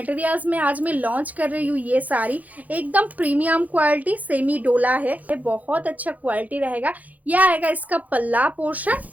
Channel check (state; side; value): late; left; 0.077 ms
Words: में आज मैं लॉन्च कर रही हूँ ये सारी एकदम प्रीमियम क्वालिटी सेमी डोला है, बहुत अच्छा क्वालिटी रहेगा। यह आएगा इसका पल्ला पोर्शन